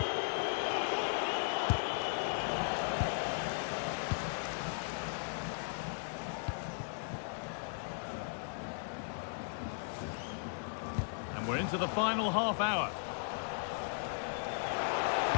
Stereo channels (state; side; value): silent; right; digital silence